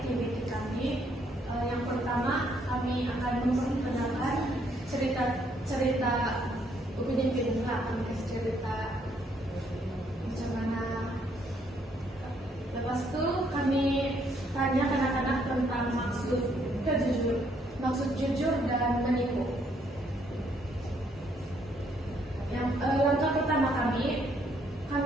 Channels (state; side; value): normal; both; correlation 0.70